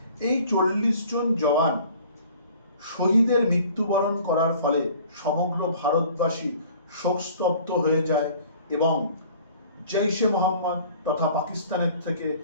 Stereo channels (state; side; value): inverted; both; correlation -0.50